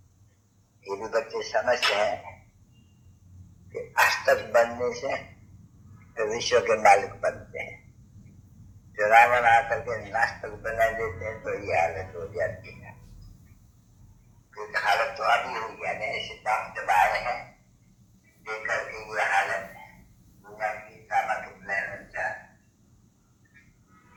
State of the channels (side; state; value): both; identical; correlation 1.00